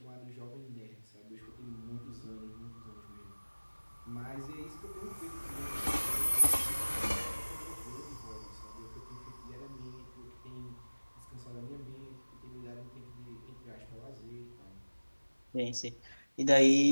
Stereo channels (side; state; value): both; inverted; correlation -1.00